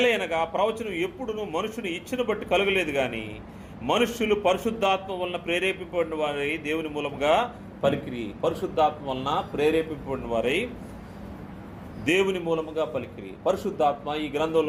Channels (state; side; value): identical; both; correlation 1.00